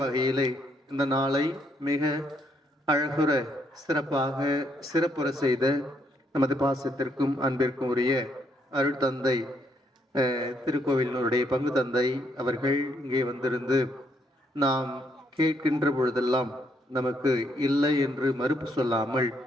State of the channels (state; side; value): normal; both; correlation 0.73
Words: வகையிலே இந்த நாளை மிக அழகுற சிறப்பாக சிறப்புற செய்த நமது பாசத்திற்கும் அன்பிற்கும் உரிய அருள் தந்தை திருக்கோவிலினுடைய பங்கு தந்தை அவர்கள் இங்கே வந்திருந்து நாம் கேட்கின்ற பொழுதெல்லாம் நமக்கு இல்லை என்று மறுப்பு சொல்லாமல்